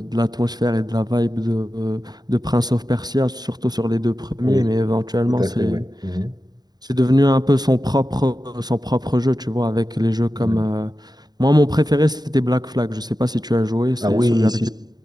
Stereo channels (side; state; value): left; late; 0.20 ms